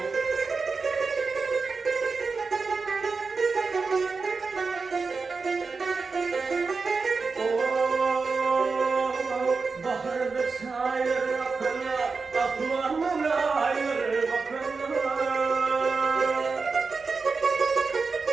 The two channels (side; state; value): left; quieter; 4.5 dB